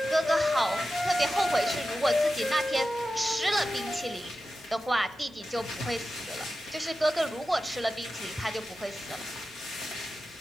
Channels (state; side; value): normal; both; correlation 0.93